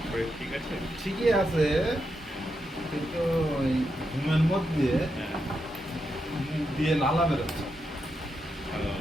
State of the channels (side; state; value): both; normal; correlation 0.84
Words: শরীর ঠিক আছে? ঠিকই আছে, কিন্তু ওই ঘুমের মধ্যে হ্যাঁ। মুখ দিয়ে লালা বেরোচ্ছে। ও,